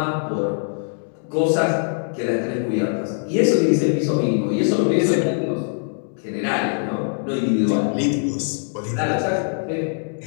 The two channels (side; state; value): right; silent; 64 dB below the other